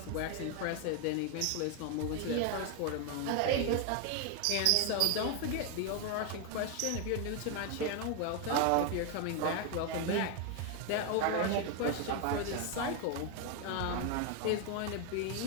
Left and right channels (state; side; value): different; both; correlation 0.01